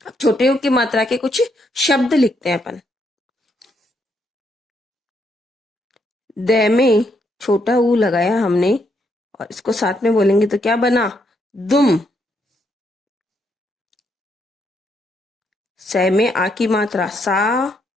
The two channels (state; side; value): normal; both; correlation 0.76